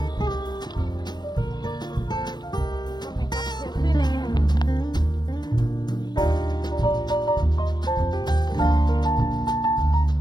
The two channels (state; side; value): late; right; 0.21 ms